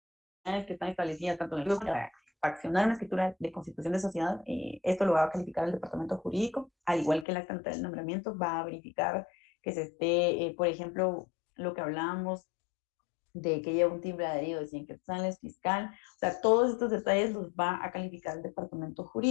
que están establecidas tanto en el para accionar una escritura de constitución de sociedad, esto lo va a calificar el departamento jurídico, al igual que el acta notarial de nombramiento, va a verificar que se esté, por ejemplo, lo que hablábamos de que lleva un timbre adherido de 100 quetzales fiscal, o sea, todos estos detalles los va a calificar el departamento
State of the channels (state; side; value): drops out; right; at 7.2 s